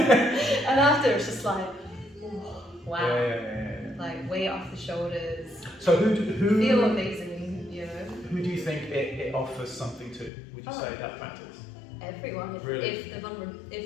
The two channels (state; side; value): drops out; right; at 10.3 s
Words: after it's just like, wow. Like weight off the shoulders. So who feel amazing, Who do you think it offers something to? Would you say that practice? Everyone. Really? Everyone.